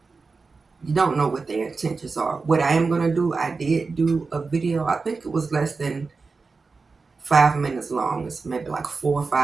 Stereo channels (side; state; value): left; quieter; 4.3 dB